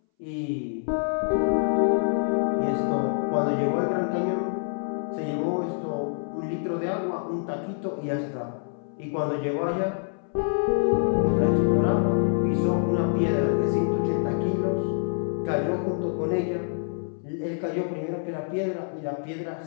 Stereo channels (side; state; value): right; silent; 61 dB below the other